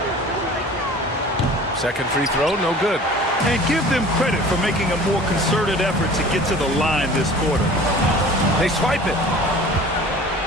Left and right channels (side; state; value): both; normal; correlation 0.44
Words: Second free throw, no good. And give them credit for making a more concerted effort to get to the line this quarter. They swipe it.